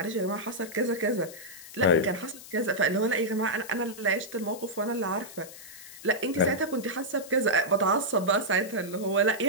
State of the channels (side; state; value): left; noise; hiss, 16 dB below the sound